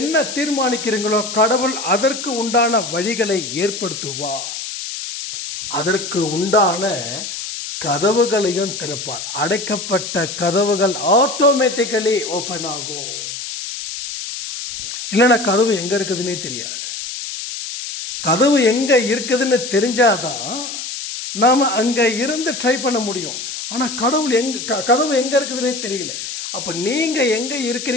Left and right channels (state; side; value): noise; left; hiss, 7 dB below the sound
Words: தீர்மானிக்கிறீங்களோ கடவுள் அதற்கு உண்டான வழிகளை ஏற்படுத்துவார். அதற்கு உண்டான கதவுகளையும் திறப்பார். அடைக்கப்பட்ட கதவுகள் ஆட்டோமேட்டிக்கலி ஓப்பன் ஆகும். இல்லைன்னா கதவு எங்க இருக்குதுன்னே தெரியாது. கதவு எங்க இருக்குதுன்னு தெரிஞ்சாதான் நாம அங்க இருந்து ட்ரை பண்ண முடியும். ஆனா கதவு எங்க இருக்குதுன்னே தெரியல. அப்ப நீங்க எங்க